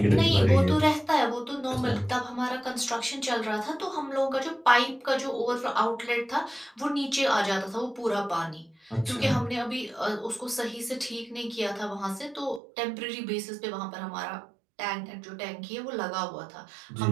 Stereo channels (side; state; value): left; drops out; at 12.6 s